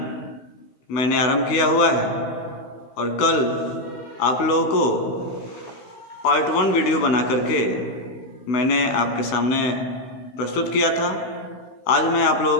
मैंने आरंभ किया हुआ है और कल आप लोगों को पार्ट 1 वीडियो बना करके मैंने आपके सामने प्रस्तुत किया था। आज मैं आप लोगों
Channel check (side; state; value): right; late; 16 ms